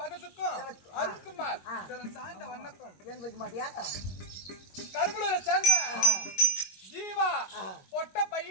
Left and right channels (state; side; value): late; right; 22 ms